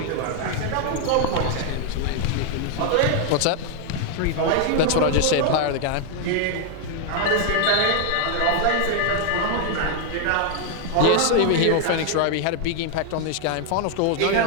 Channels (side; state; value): both; different; correlation 0.00